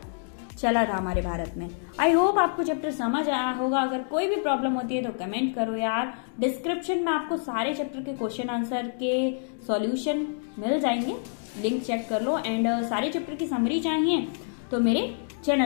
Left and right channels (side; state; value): right; silent; digital silence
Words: चला था हमारे भारत में। आई होप आपको चैप्टर समझ आया होगा। अगर कोई भी प्रॉब्लम होती है तो कमेंट करो यार। डिस्क्रिप्शन में आपको सारे चैप्टर के क्वेश्चन आंसर के सॉल्यूशन मिल जाएंगे, लिंक चेक कर लो। एंड सारे चैप्टर की समरी चाहिए तो मेरे